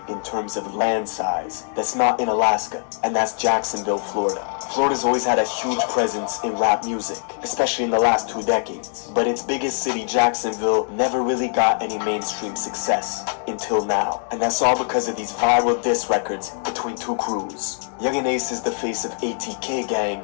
in terms of land size. That's not in Alaska, and that's Jacksonville, Florida. Florida's always had a huge presence in rap music, especially in the last 2 decades. But its biggest city, Jacksonville, never really got any mainstream success until now. And that's all because of these viral diss records between two crews. Yungeen Ace is the face of ATK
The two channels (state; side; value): silent; right; 64 dB below the other